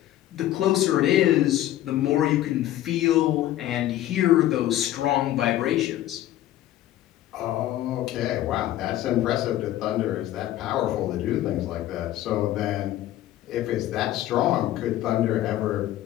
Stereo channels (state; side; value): quieter; right; 13.6 dB